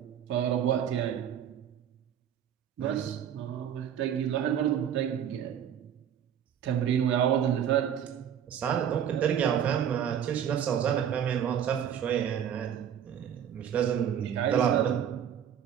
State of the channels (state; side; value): quieter; left; 9.1 dB